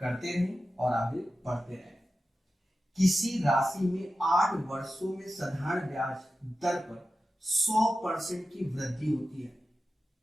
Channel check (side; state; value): both; normal; correlation 0.93